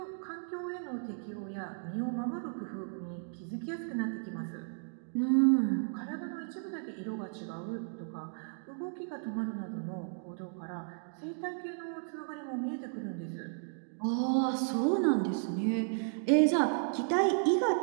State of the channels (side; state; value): left; silent; digital silence